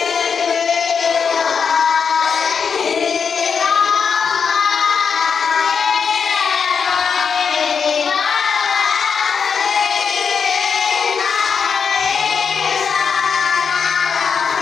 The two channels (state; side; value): quieter; right; 6.2 dB